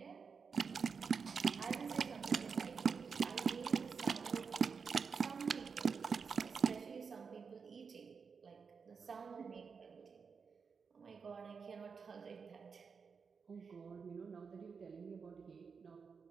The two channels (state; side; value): quieter; left; 5.6 dB